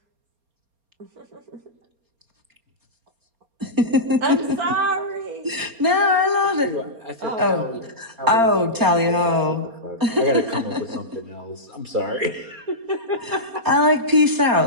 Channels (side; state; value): left; late; 4.3 ms